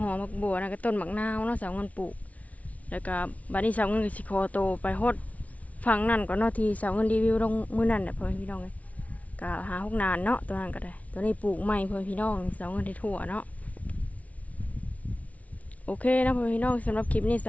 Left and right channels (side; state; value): right; late; 0.068 ms